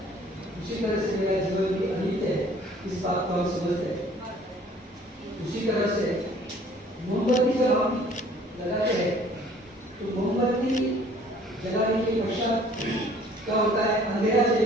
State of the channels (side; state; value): both; normal; correlation 0.55